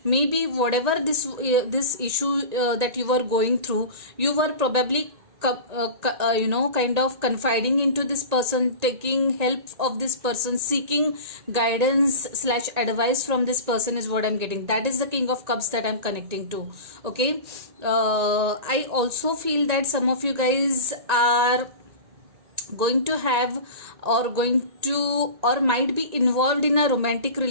Maybe whatever this issue that you were going through, you were probably kind of confiding into this person, taking help of this person, seeking guidance / advice from this person is what I'm getting. That is the King of Cups that I'm connecting to. Okay, I also feel that some of you guys are going to have or might be involved in a romantic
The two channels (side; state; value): left; late; 1.8 ms